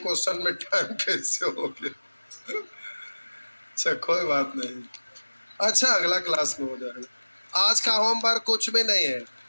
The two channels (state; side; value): inverted; both; correlation -1.00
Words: में टाइम कैसे हो गया। अच्छा कोई बात नहीं, अच्छा अगला क्लास में हो जाएगा। आज का होमवर्क कुछ भी नहीं है,